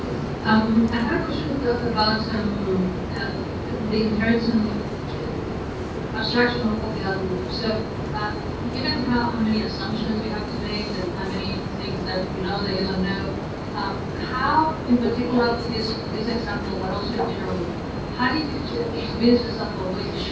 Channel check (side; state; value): both; identical; correlation 1.00